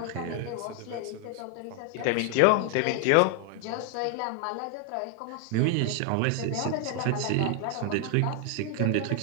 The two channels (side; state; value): both; different; correlation 0.01